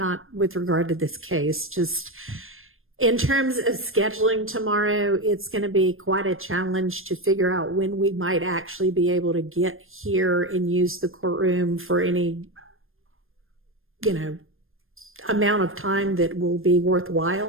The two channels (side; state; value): left; late; 0.60 ms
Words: with regard to this case, just in terms of scheduling tomorrow. It's going to be quite a challenge to figure out when we might actually be able to get here and use the courtroom for any, amount of time that will be